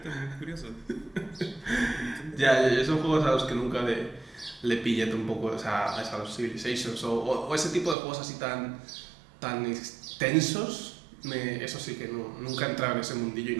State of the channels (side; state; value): left; drops out; at 8.0 s